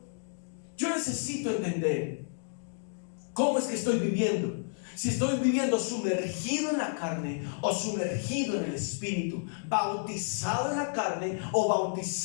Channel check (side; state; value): right; silent; digital silence